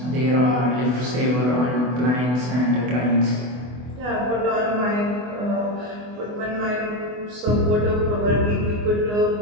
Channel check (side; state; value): left; late; 24 ms